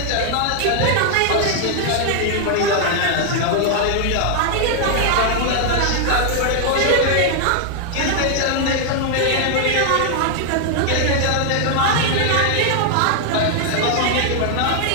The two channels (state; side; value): different; both; correlation 0.00